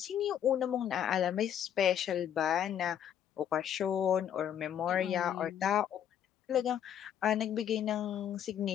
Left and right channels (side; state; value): right; quieter; 9.5 dB